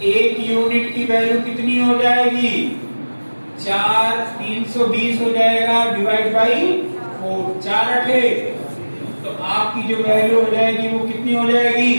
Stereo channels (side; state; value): both; inverted; correlation -1.00